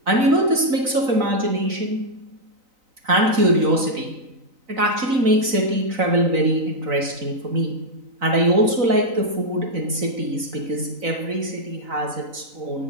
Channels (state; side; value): late; left; 4.0 ms